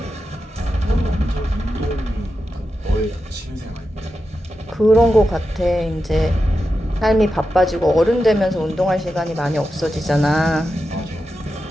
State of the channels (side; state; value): both; normal; correlation 0.90